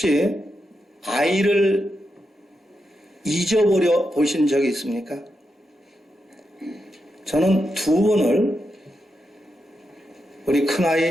아이를 잊어버려 보신 적이 있습니까? 저는 2번을 우리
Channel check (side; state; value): both; normal; correlation 0.86